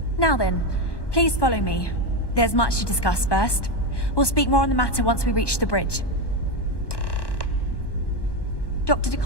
Now then, please follow me. There's much to discuss first. We'll speak more on the matter once we reach the bridge. Dr.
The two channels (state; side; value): late; right; 1.2 ms